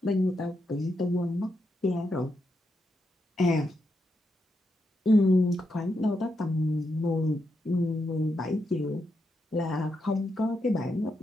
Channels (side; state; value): both; normal; correlation 0.83